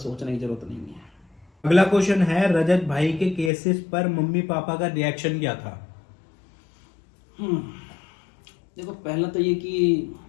सोचने की जरूरत नहीं है। अगला क्वेश्चन है, रजत भाई के केसेस पर मम्मी पापा का रिएक्शन क्या था? देखो, पहला तो ये कि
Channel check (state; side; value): drops out; right; at 3.5 s